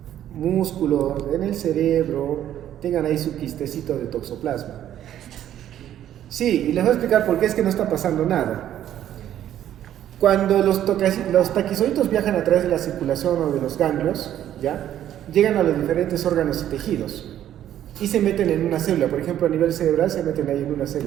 músculos, en el cerebro, tengan ahí su quistecito de toxoplasma. Sí, y les voy a explicar por qué es que no está pasando nada. Cuando los taquizoitos viajan a través de la circulación o de los ganglios, ¿ya? Llegan a los diferentes órganos y tejidos y se meten en una célula. Por ejemplo, a nivel cerebral se meten ahí en una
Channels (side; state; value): left; quieter; 11.3 dB